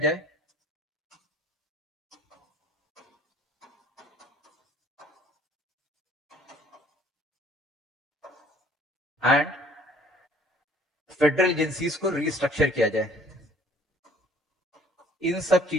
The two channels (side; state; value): both; normal; correlation 0.57